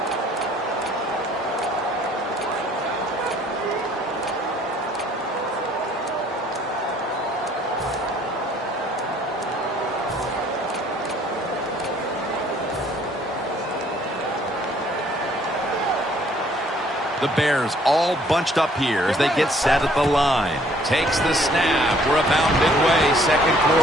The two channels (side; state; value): both; normal; correlation 0.60